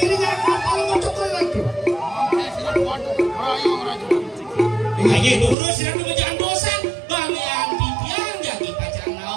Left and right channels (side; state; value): left; drops out; at 5.6 s